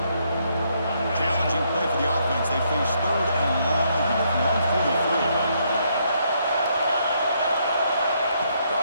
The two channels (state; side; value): inverted; both; correlation -0.73